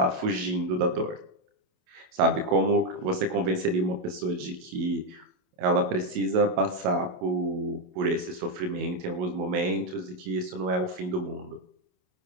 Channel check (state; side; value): late; left; 28 ms